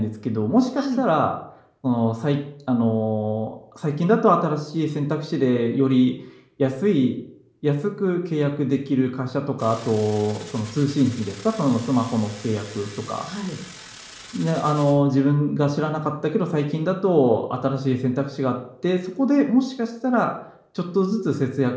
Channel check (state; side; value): identical; both; correlation 1.00